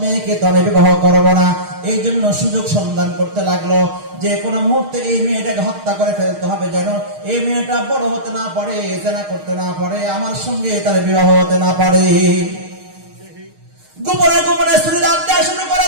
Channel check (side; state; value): left; late; 6.5 ms